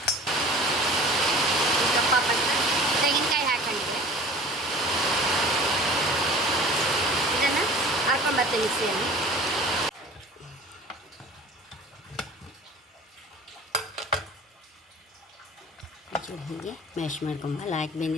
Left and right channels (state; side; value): normal; both; correlation 0.42